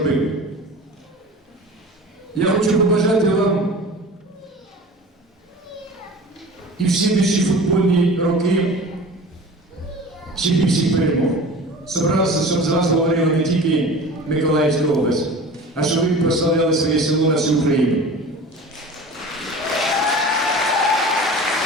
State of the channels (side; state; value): both; normal; correlation 0.38